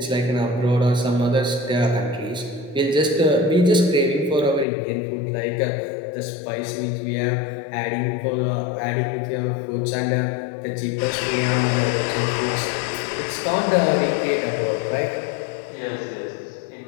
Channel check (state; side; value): drops out; right; at 4.7 s